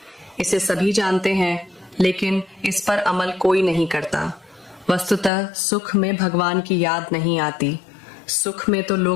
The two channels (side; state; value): right; drops out; at 5.3 s